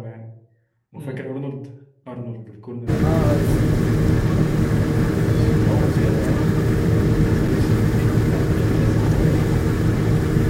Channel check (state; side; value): identical; both; correlation 1.00